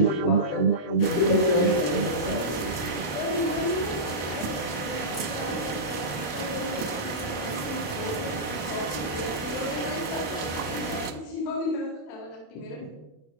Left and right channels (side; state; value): right; late; 27 ms